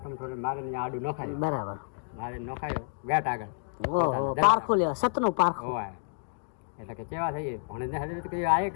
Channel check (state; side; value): silent; right; digital silence